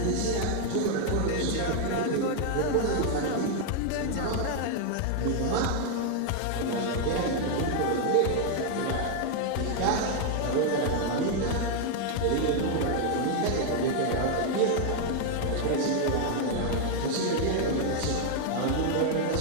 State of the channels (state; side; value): different; both; correlation 0.00